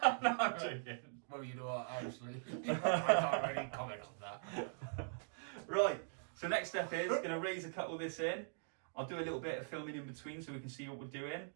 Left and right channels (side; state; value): left; silent; digital silence